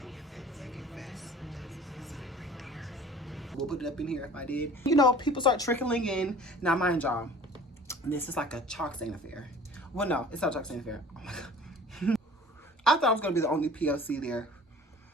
at Psychic Fest. Right there. We'll put it up in here if I did. You know, people start trickling in. Now, mind y'all, this is like a chalk stain affair. Well, no, it's not a chalk stain affair. Oh my God. I thought I was going to be the only POC there.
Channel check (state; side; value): normal; both; correlation 0.47